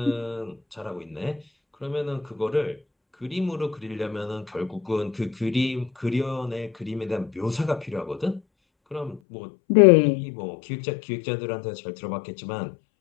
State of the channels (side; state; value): right; drops out; at 9.2 s